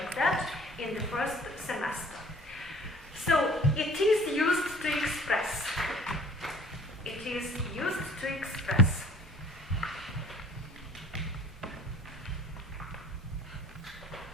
that in the first semester. So it is used to express. It is used to express.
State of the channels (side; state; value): both; normal; correlation 0.51